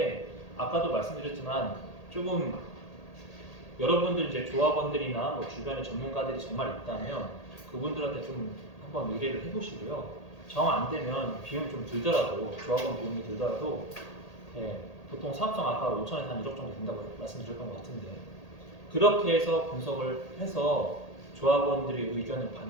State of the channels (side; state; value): right; late; 1.8 ms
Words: 아까도 말씀드렸지만 조금 여러분들 이제 조합원들이나 뭐 주변에 전문가들이 정말 있다면 그분들한테 좀 한번 의뢰를 해보시고요. 정 안 되면 비용이 좀 들더라도 조합원 비용이 들더라도 예, 보통 사업성 아까 5천에서 한 1억 정도 된다고 말씀드렸던 것 같은데 그렇게 해서 분석을 해서 조합원들의 의견을